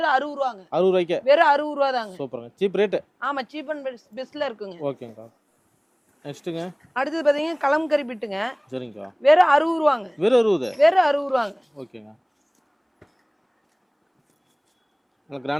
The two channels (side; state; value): both; identical; correlation 1.00